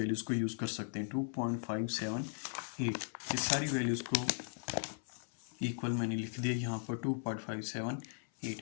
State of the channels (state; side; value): silent; right; 53 dB below the other